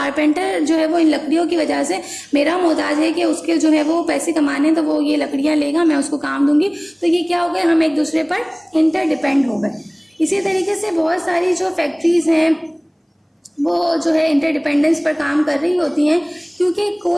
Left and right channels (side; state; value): both; identical; correlation 1.00